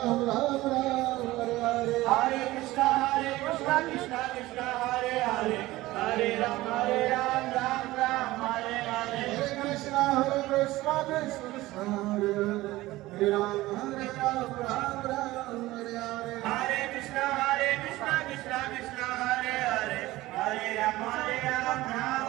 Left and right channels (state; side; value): quieter; left; 17.9 dB